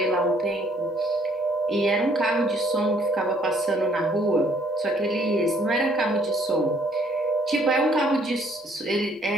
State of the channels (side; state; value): both; normal; correlation 0.62